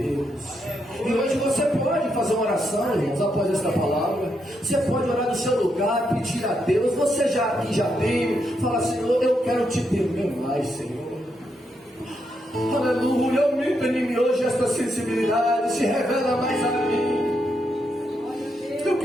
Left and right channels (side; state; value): both; normal; correlation 0.80